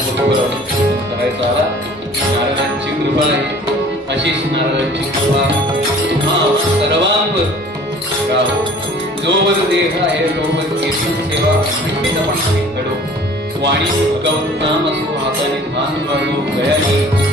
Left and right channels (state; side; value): normal; both; correlation 0.49